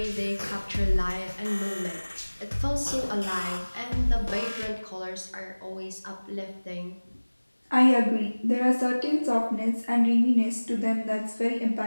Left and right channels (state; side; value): inverted; both; correlation -1.00